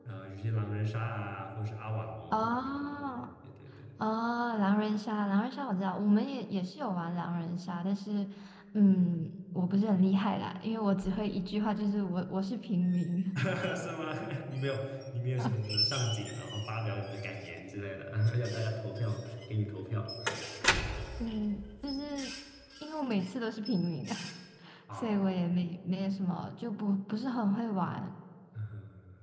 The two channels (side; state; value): both; identical; correlation 1.00